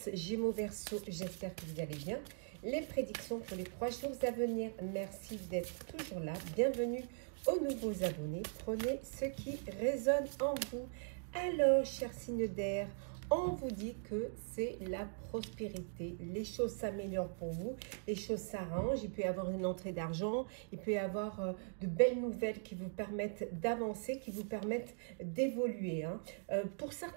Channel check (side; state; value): left; silent; digital silence